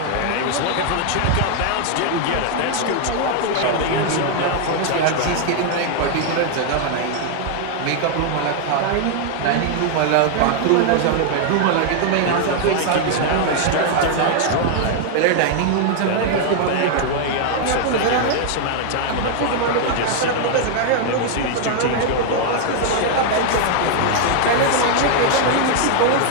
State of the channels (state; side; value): different; both; correlation 0.00